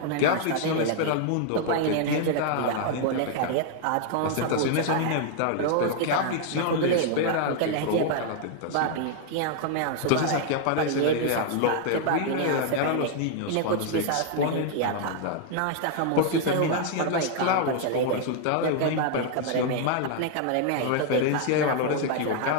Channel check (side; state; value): both; different; correlation 0.00